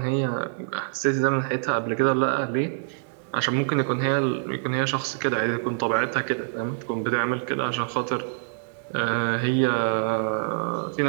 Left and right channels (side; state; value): left; silent; digital silence